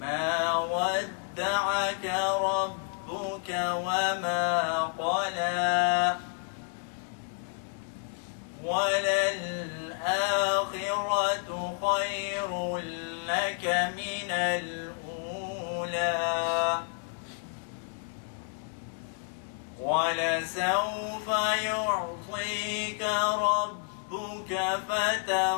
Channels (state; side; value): silent; right; 58 dB below the other